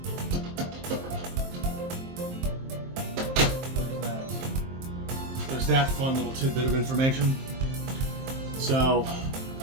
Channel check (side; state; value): left; late; 23 ms